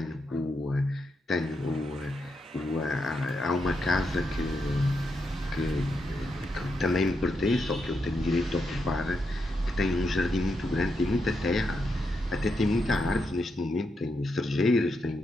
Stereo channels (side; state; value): both; normal; correlation 0.83